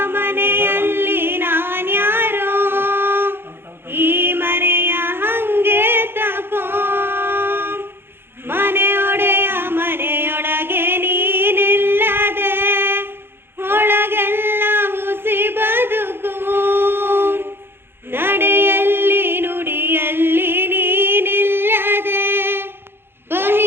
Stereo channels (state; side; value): late; left; 0.11 ms